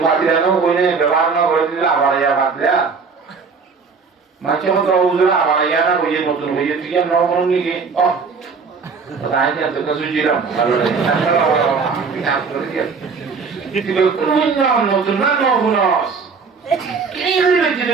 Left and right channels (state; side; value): quieter; left; 5.1 dB